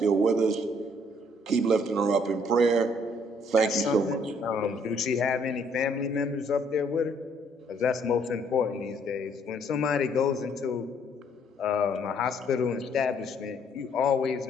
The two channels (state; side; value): normal; both; correlation 0.65